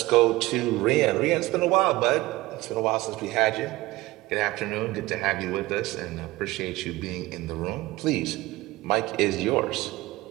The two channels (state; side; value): quieter; left; 19.1 dB